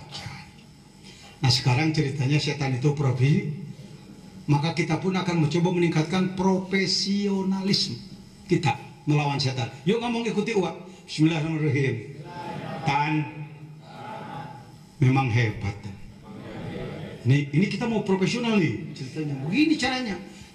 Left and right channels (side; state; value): both; identical; correlation 1.00